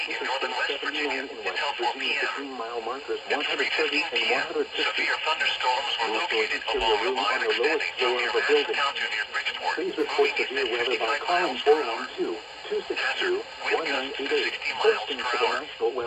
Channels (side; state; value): both; identical; correlation 1.00